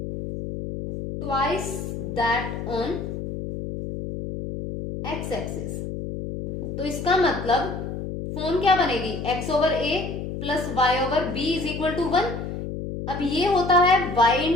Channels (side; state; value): left; noise; hum, 6 dB below the sound